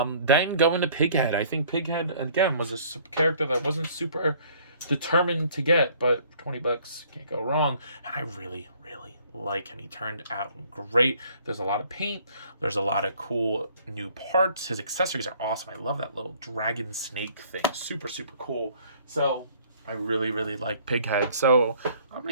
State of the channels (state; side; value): inverted; both; correlation -0.58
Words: Then going to Pighead. I think Pighead, again, was a character that wasn't super determined to get, but for 20 bucks, can't go wrong. And I really, really like him. He turned out great. There's a lot of paint. There's a lot of cool new parts. His accessories are awesome. I love that little dragon snake thing. Super, super cool. So I really, really like Pighead. So I'm going